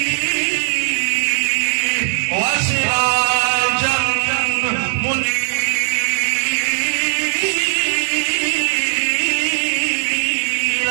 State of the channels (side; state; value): left; silent; digital silence